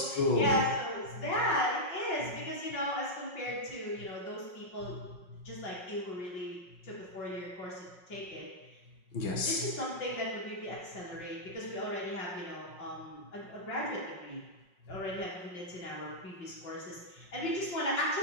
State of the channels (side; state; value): right; late; 5.5 ms